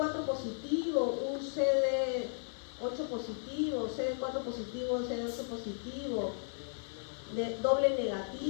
positivo, un CD8 positivo, CD4 positivo, CD8 positivo, doble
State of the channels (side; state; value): right; silent; 54 dB below the other